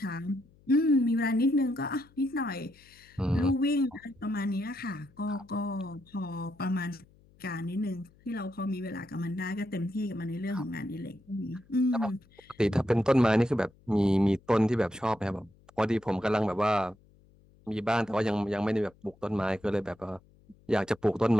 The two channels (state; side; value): noise; left; hum, 29 dB below the sound